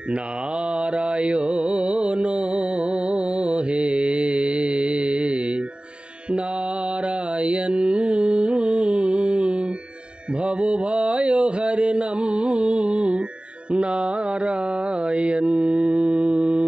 নারায়ণ হে নারায়ণ, ভবভয় হরণম নারায়ণ।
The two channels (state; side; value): late; left; 0.053 ms